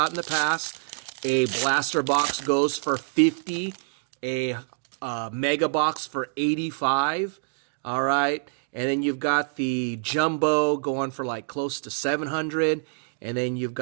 in the past. A blaster box goes for $50, a mega box for $85, all right? And then you've got the jumbo going for like close to $700, and then you've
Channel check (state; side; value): silent; left; digital silence